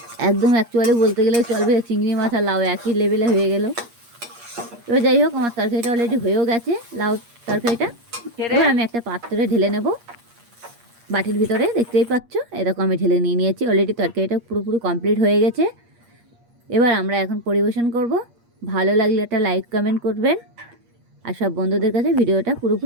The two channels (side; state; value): left; late; 8.5 ms